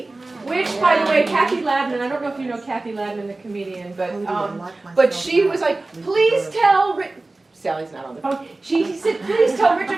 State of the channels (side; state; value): left; quieter; 3.1 dB